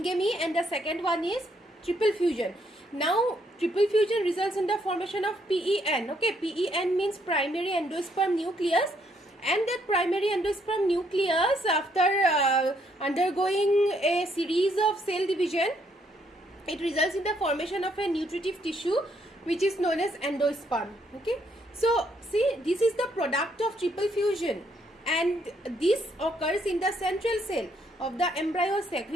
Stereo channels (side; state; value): both; normal; correlation 0.71